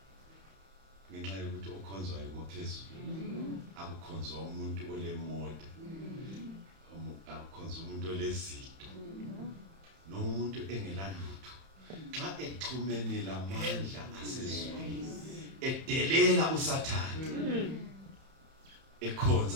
ngenxa yokuthi okhonzwayo ngophezulu akukhonzwa umuntu olemoda akukhonzwa umuntu olezito nomuntu engelalutho xa exhumene lamandla asezulwini edelela uSathane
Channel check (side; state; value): left; late; 31 ms